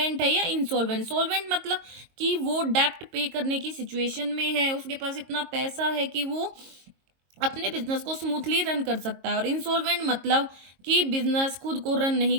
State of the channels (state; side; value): late; left; 22 ms